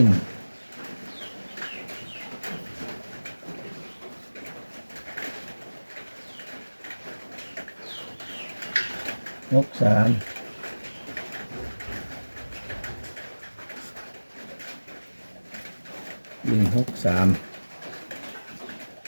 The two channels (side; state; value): both; inverted; correlation -1.00